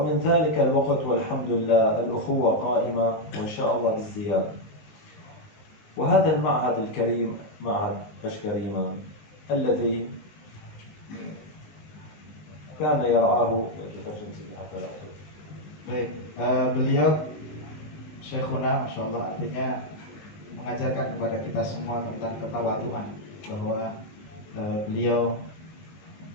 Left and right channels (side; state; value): right; late; 19 ms